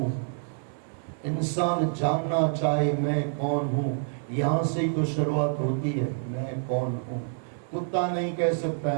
इंसान जानना चाहे मैं कौन हूं, यहां से ही तो शुरुआत होती है, मैं कौन हूं। कुत्ता नहीं कह सकता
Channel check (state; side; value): silent; left; digital silence